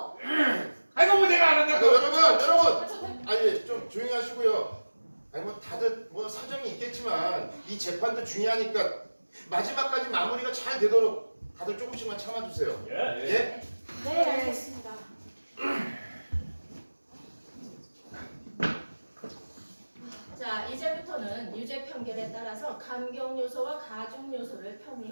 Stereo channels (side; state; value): both; inverted; correlation -1.00